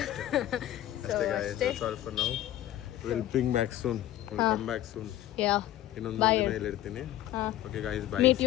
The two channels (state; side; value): quieter; right; 13.5 dB